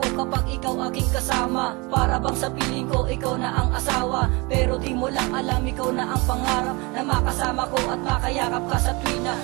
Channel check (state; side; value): quieter; left; 26.7 dB